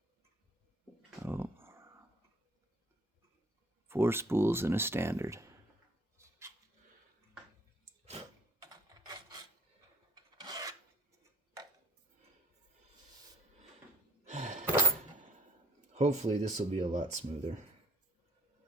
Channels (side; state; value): both; normal; correlation 0.56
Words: Oh. 4 spools and a standard. Hopefully this will be a lot smoother.